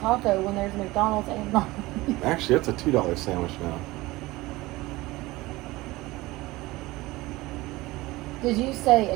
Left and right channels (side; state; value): left; quieter; 19.8 dB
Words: when there's McDonald's and not. Actually, it's a $2 sandwich now. Did you say